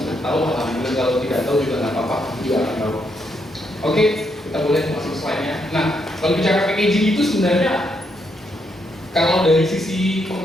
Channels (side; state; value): both; normal; correlation 0.77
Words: tahu, alhamdulillah. Kalau tidak tahu juga nggak apa-apa, juga akan tahu. Oke, kita boleh masuk slide-nya. Nah, kalau bicara packaging itu sebenarnya kalau dari sisi